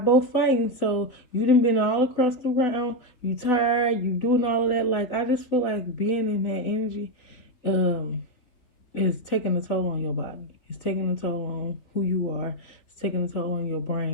fighting. So you done been all across the round. You tired. You doing all of that. Like I just feel like being in that energy, um, is taking a toll on your body. It's taking a toll on who you are. It's taking a toll on your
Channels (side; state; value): right; late; 3.8 ms